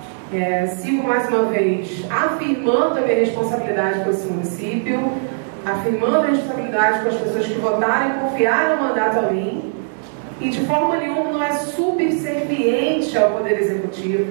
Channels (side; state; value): left; silent; digital silence